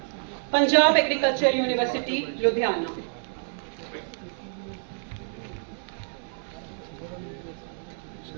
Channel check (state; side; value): silent; left; digital silence